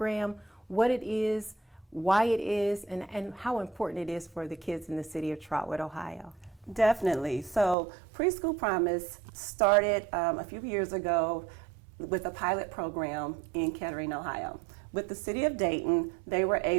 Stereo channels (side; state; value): left; drops out; at 7.8 s